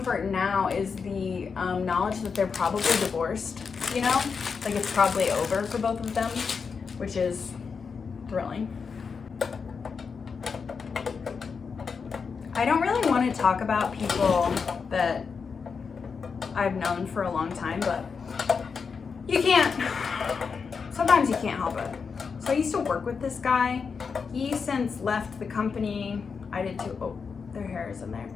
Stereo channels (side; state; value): right; quieter; 5.6 dB